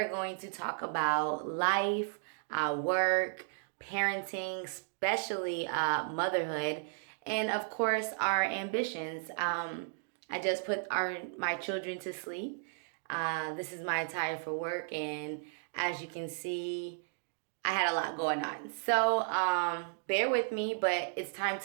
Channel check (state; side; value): silent; left; digital silence